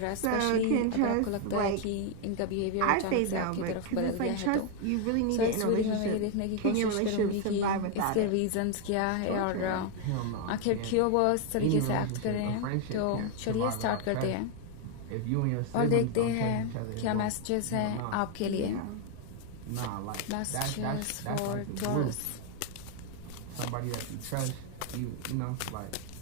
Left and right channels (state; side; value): different; both; correlation 0.01